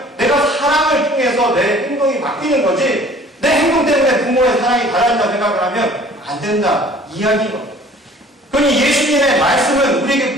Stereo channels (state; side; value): normal; both; correlation 0.51